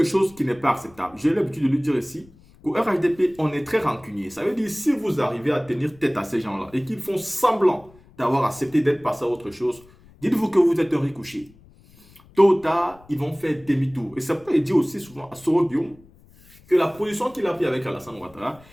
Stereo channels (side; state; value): left; noise; rumble, 26 dB below the sound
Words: chose qui n'est pas acceptable. J'ai l'habitude de lui dire ici qu'au RHDP, on est très rancunier. Ça veut dire si vous arrivez à tenir tête à ces gens-là et qu'ils font semblant d'avoir accepté d'être passé à autre chose, dites-vous que vous êtes un ricochet. Tôt ou tard, ils vont faire demi-tour. Et ça peut dire aussi souvent à Soro Guillaume que la position qu'il a prise avec Alassane Ouattara,